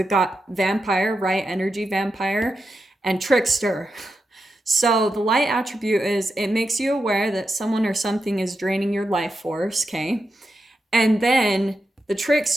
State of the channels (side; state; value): both; normal; correlation 0.87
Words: got vampire, right? Energy vampire, and trickster. So the light attribute is it makes you aware that someone or something is draining your life force, okay? And then the